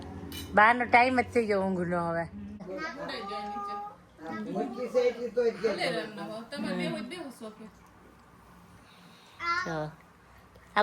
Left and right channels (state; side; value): identical; both; correlation 1.00